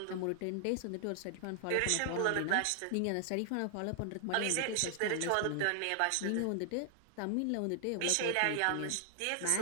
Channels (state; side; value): different; both; correlation 0.00